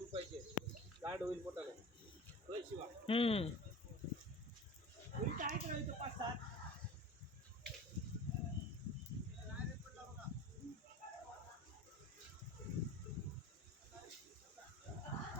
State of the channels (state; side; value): normal; both; correlation 0.36